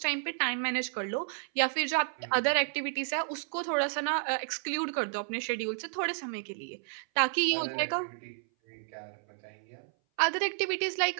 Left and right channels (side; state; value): left; silent; 57 dB below the other